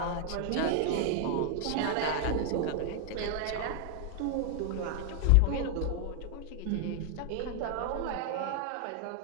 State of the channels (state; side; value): different; both; correlation 0.00